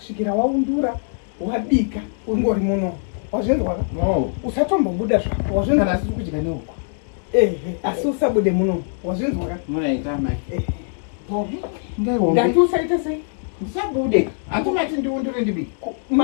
waundura, wabika, ungori muno. Wazvinzwa? No. Usatombobuda zvako. Wazvinzwa? Kana siri kudya neuko. Asi usabude muno. Wazvinzwa? Munoita mai. Ndati usaita sei? Ndisabude. Hatumati ndiundure ndibike.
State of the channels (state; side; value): silent; right; digital silence